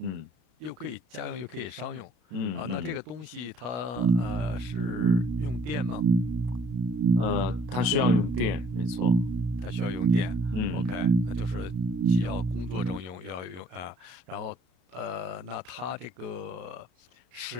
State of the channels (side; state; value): left; late; 33 ms